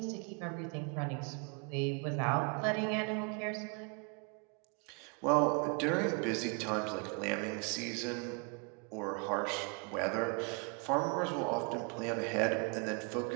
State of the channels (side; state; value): left; quieter; 35.1 dB